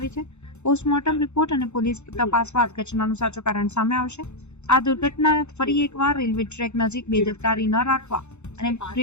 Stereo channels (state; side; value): late; right; 0.82 ms